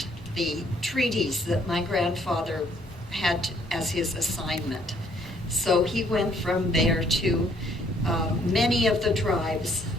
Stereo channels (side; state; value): both; normal; correlation 0.65